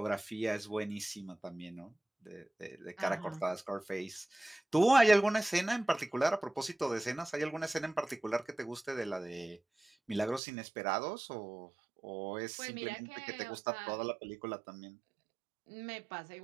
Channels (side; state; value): left; drops out; at 10.4 s